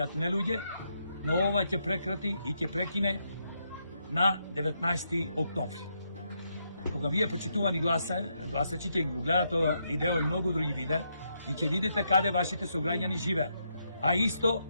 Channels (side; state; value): both; inverted; correlation -0.79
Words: не луѓе, но ова ќе прекрати и ќе прекине на 19 октомври. Кога вие почитувани гласачи ќе го гледате ова видео и многу други видеа и ќе видите каде вашите сограѓани живеат. А исто